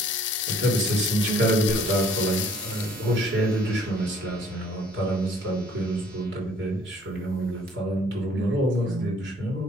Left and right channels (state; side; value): normal; both; correlation 0.58